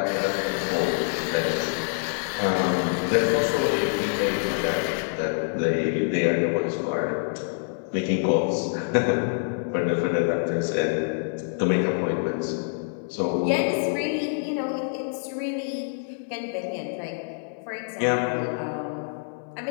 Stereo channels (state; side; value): silent; right; digital silence